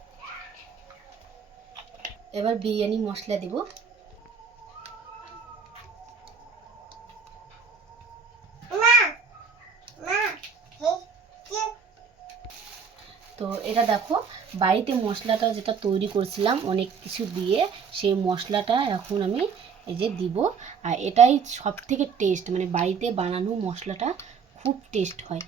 এবার বিরিয়ানি মশলা দিব। তো এটা দেখো বাড়িতে মশলাটা যেটা তৈরি করছিলাম অনেক কিছু দিয়ে, সেই মশলাটা এখন আমি এই যে দিব। আর এটাই সব থেকে টেস্ট, মানে বাড়িতে বানানো মশলাটা খুব টেস্ট হয়,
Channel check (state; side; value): quieter; left; 6.1 dB